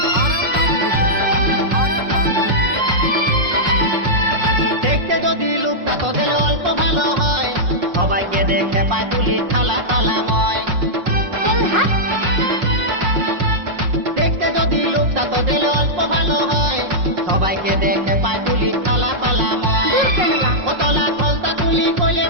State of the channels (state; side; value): late; left; 5.5 ms